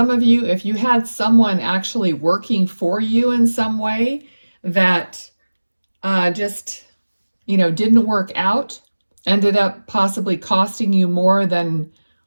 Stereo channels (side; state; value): both; inverted; correlation -1.00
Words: of you, if you had someone actually working for you in some way that just, you know, didn't work out, ended up possibly costing you more than